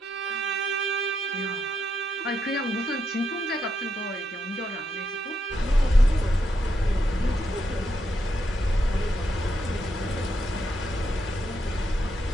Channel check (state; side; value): normal; both; correlation 0.81